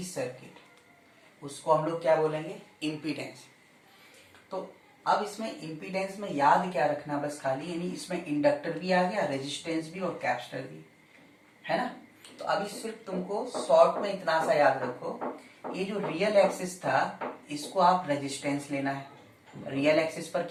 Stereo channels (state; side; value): identical; both; correlation 1.00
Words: circuit, उसको हम लोग क्या बोलेंगे, इम्पीडेंस। तो अब इसमें इम्पीडेंस में याद क्या रखना, बस खाली यानी इसमें इंडक्टर भी आ गया, रेजिस्टेंस भी और कैपेसिटर भी, है ना। तो अभी सिर्फ तुमको शॉर्ट में इतना सा याद रखो, ये जो रियल एक्सिस था इसको आप रेजिस्टेंस लेना है, रियल एक्सिस पर